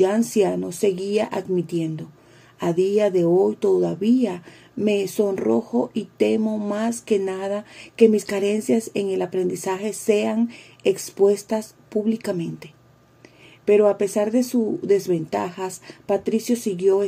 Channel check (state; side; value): identical; both; correlation 1.00